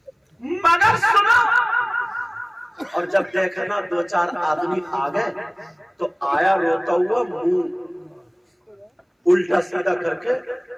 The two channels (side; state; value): both; identical; correlation 1.00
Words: مگر سنو، اور جب دیکھا نا دو چار آدمی آ گئے، تو آیا روتا ہوا منہ الٹا سیدھا کر کے